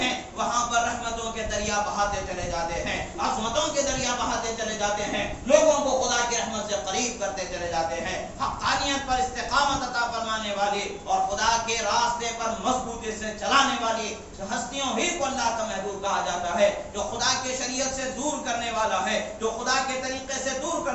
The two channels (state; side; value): identical; both; correlation 1.00